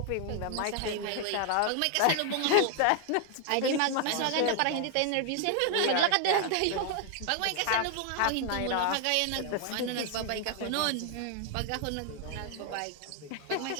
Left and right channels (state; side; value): different; both; correlation 0.01